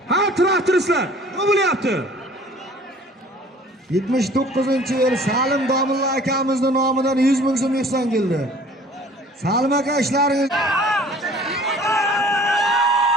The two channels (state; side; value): normal; both; correlation 0.50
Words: Ha, traktoristlar, nima bo'lyapti? 79-yil Salim Domilla akamizning nomidan 100 ming so'm ihson keldi. Salim aka ishlaringiz